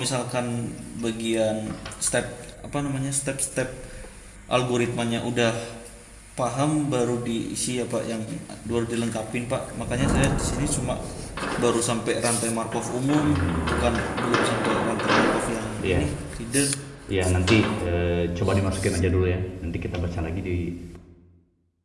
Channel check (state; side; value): identical; both; correlation 1.00